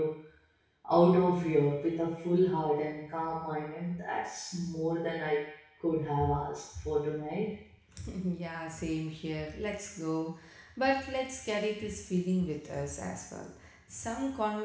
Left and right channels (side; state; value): both; identical; correlation 1.00